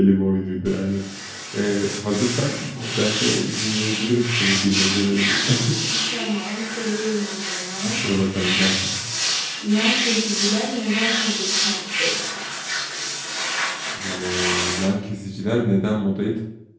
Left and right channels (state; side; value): identical; both; correlation 1.00